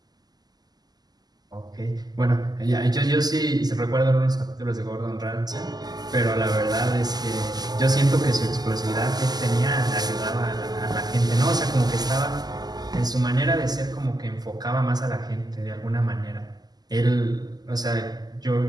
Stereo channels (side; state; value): left; late; 0.20 ms